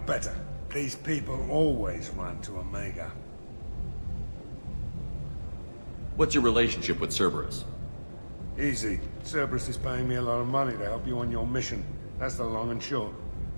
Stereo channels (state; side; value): inverted; both; correlation -1.00